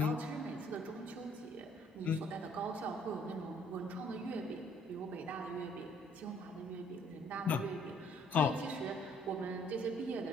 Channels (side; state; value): both; normal; correlation 0.62